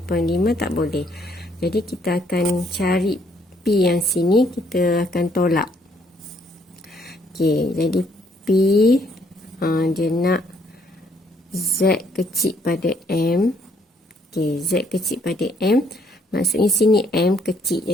tak boleh. Jadi kita akan cari P yang sini, kita akan tolak. Okey, jadi P dia nak Z kecil pada M. Okey, Z kecil pada M. Maksudnya sini M kecil.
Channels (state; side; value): normal; both; correlation 0.68